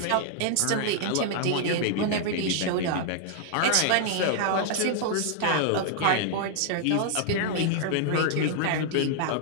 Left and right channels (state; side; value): different; both; correlation 0.00